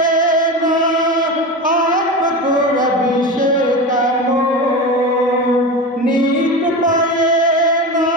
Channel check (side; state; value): both; normal; correlation 0.24